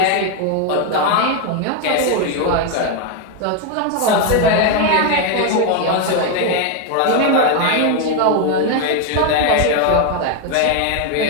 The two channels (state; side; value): different; both; correlation 0.01